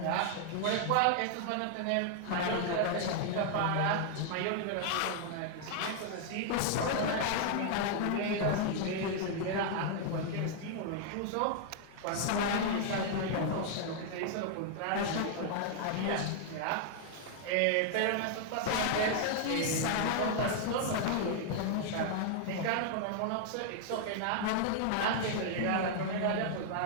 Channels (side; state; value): both; different; correlation 0.00